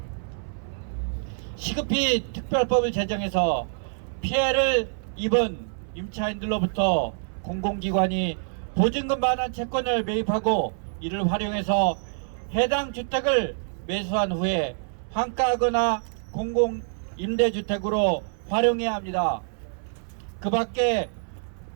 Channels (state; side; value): silent; left; 60 dB below the other